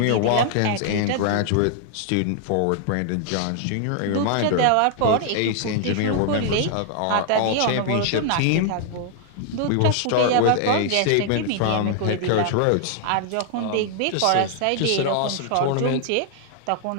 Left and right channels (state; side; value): different; both; correlation 0.00